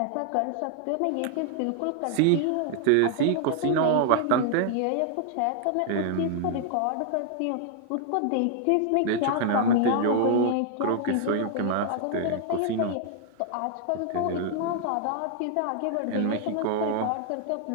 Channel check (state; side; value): different; both; correlation 0.00